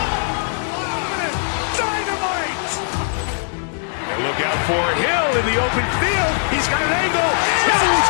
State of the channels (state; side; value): silent; right; 66 dB below the other